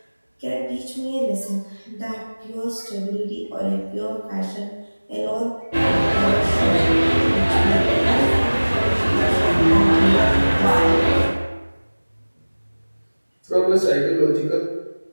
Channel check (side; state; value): both; inverted; correlation -1.00